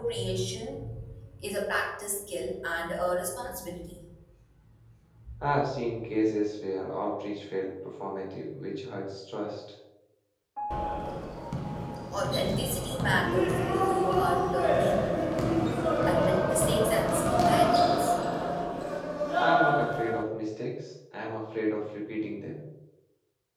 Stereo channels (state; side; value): identical; both; correlation 1.00